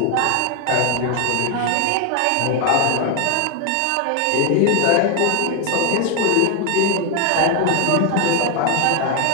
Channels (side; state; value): both; different; correlation 0.01